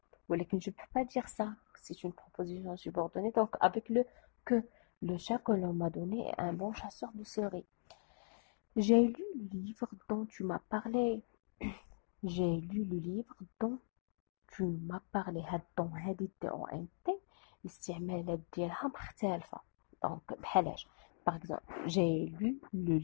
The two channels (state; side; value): silent; right; digital silence